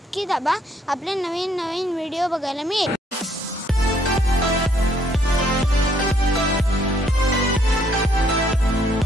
दाबा. आपले नवीन व्हिडिओ बघायला मिळेल.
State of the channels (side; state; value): both; normal; correlation 0.68